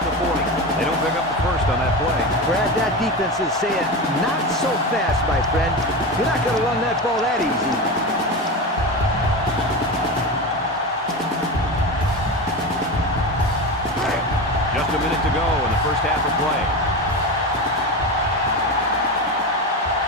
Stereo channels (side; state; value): both; normal; correlation 0.22